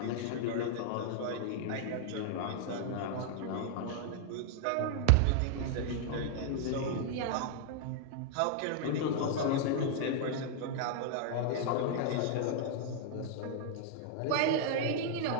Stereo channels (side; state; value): both; different; correlation -0.01